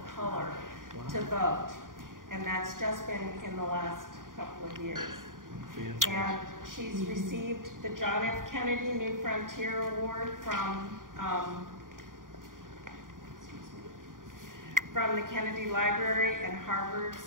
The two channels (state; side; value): late; left; 0.90 ms